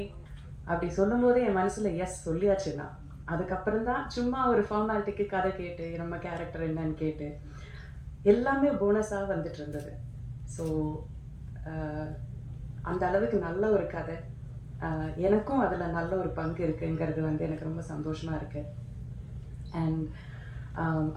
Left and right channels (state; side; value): identical; both; correlation 1.00